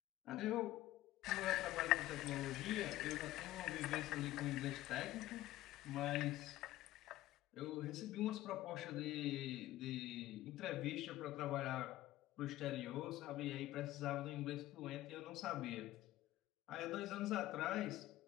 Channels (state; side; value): quieter; right; 15.6 dB